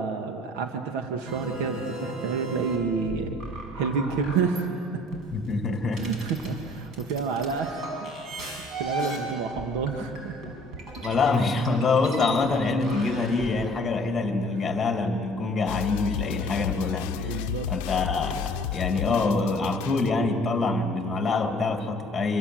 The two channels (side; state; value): both; normal; correlation 0.54